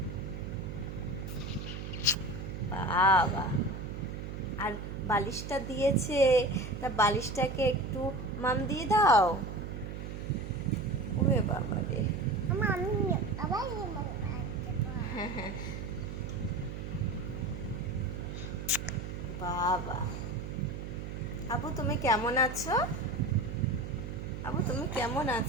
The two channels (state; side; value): noise; right; hum, 7 dB below the sound